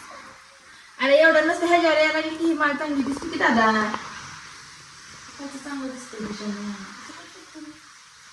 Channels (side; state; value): both; identical; correlation 1.00